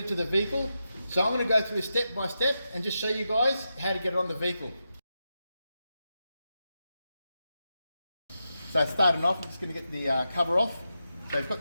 to the vehicle. So I'm going to go through step by step and just show you guys how to get it on the vehicle. So starting off, I'm just going to get the cover off. So you've got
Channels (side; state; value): both; inverted; correlation -0.88